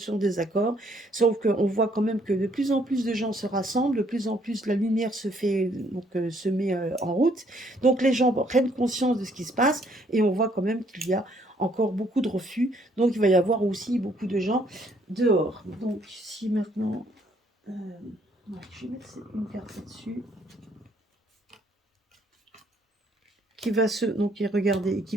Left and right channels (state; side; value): normal; both; correlation 0.66